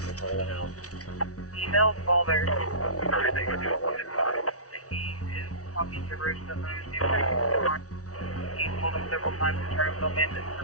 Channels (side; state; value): right; late; 0.67 ms